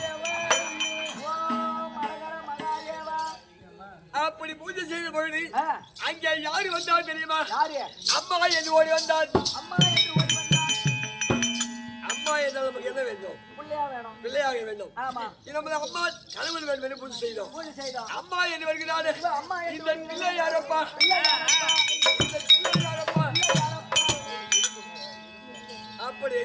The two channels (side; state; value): both; identical; correlation 1.00